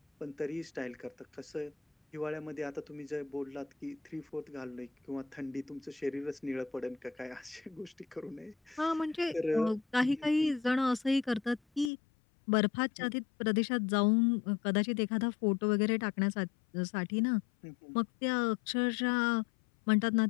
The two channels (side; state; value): right; drops out; at 11.9 s